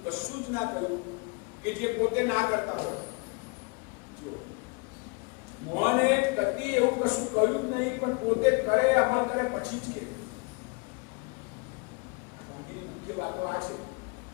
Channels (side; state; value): right; quieter; 30.0 dB